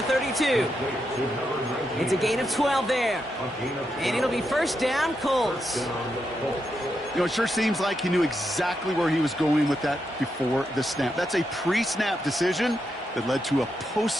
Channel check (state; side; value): normal; both; correlation 0.83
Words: 32. It's a gain of 12 there. And it'll be 1st down, Colts. You know, it sure seems like he knew exactly where he was going with that before the snap. That's a pre-snap decision that led to a